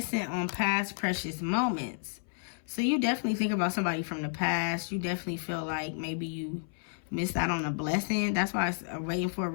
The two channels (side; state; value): right; silent; 57 dB below the other